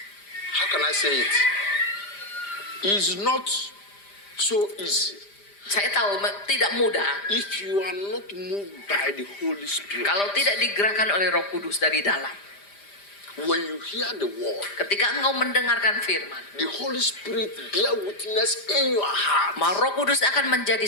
how can I say it? It's not so easy Saya tahu tidak mudah if you are not moved by the Holy Spirit. kalau tidak digerakkan oleh Roh Kudus dari dalam. When you hear the word, Ketika engkau mendengarkan firman, the Holy Spirit bear witness in your heart. maka Roh Kudus akan menjadi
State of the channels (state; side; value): late; right; 5.0 ms